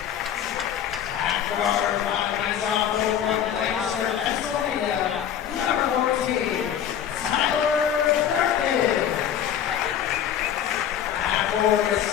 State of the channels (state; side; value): quieter; right; 9.6 dB